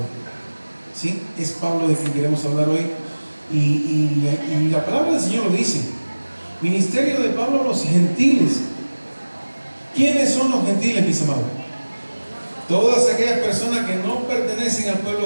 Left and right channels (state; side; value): inverted; both; correlation -1.00